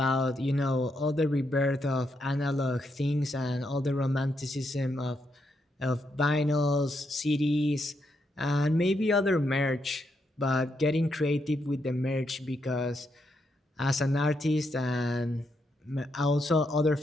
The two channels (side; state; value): both; normal; correlation 0.80